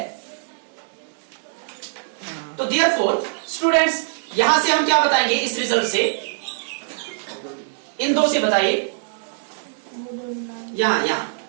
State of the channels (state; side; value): silent; left; 64 dB below the other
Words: तो देयरफॉर स्टूडेंट्स यहां से हम क्या बताएंगे इस रिजल्ट से, इन दो से बताइए, यहाँ